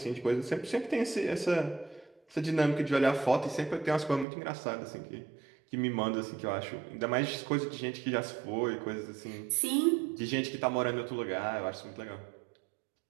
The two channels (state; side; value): drops out; left; at 4.2 s